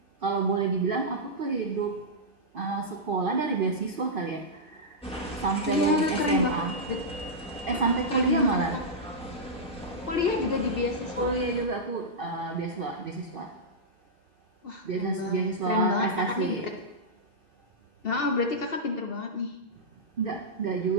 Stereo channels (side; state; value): both; normal; correlation -0.10